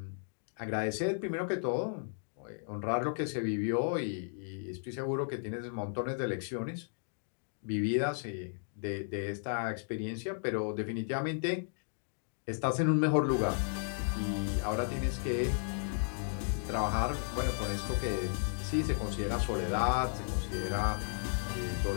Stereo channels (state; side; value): silent; right; digital silence